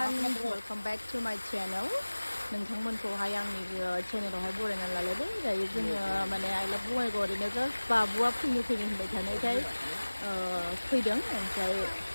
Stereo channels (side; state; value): both; inverted; correlation -1.00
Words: welcome back to my channel. नोंथांमोनखौहाय आंनि चेनेलावहाय बरायनानै लालायदों। दायो जोङो माने आइ लाभ बङाइगाव ओरैनो just बाबुआ फैनो होनबाय थानायखाय फैदों। ओमफ्राय